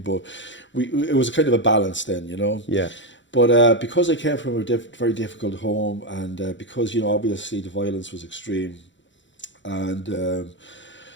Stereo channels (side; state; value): right; late; 0.54 ms